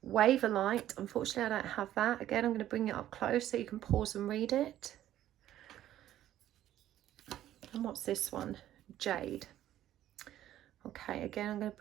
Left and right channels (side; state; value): left; quieter; 12.6 dB